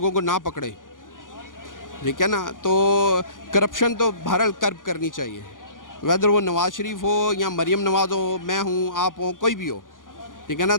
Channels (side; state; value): right; late; 0.89 ms